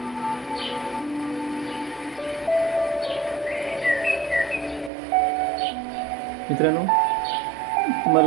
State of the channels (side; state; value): left; drops out; at 4.9 s